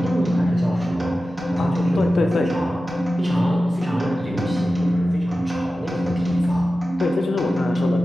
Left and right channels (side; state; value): both; normal; correlation 0.94